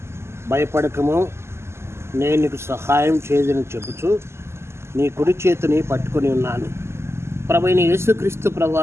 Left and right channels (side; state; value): left; late; 0.13 ms